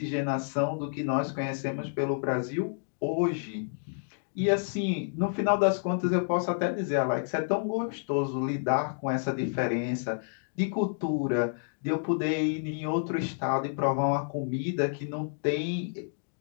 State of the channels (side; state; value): right; silent; digital silence